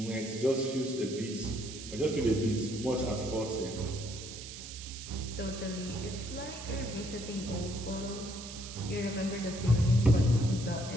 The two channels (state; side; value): noise; right; hiss, 11 dB below the sound